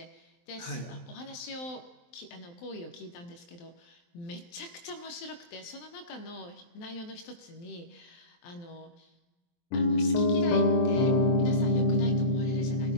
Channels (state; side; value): late; right; 23 ms